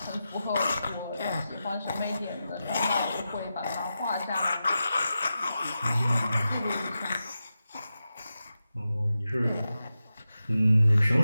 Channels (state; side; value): inverted; both; correlation -0.91